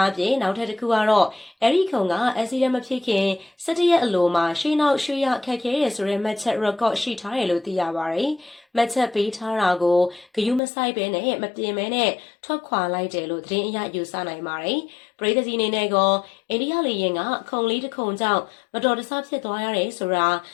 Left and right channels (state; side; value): drops out; right; at 10.6 s